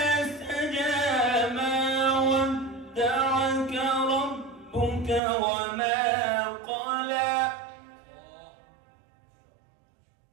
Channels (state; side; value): drops out; left; at 5.2 s